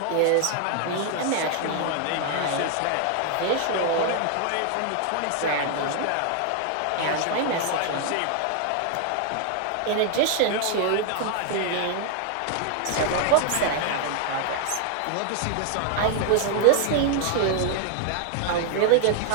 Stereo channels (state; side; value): different; both; correlation 0.00